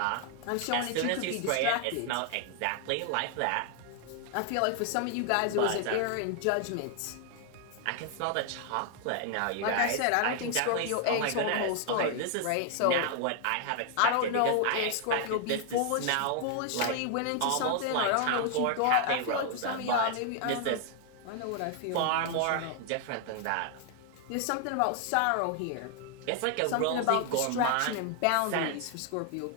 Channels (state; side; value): different; both; correlation 0.00